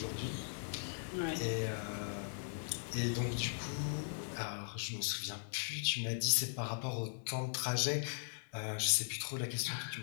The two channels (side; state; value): right; silent; digital silence